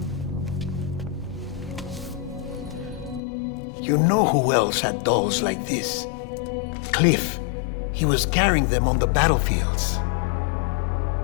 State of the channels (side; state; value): right; drops out; at 3.2 s